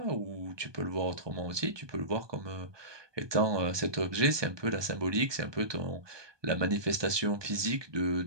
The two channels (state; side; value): late; left; 1.2 ms